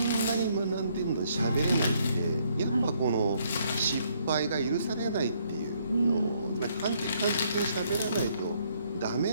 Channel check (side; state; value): both; inverted; correlation -0.69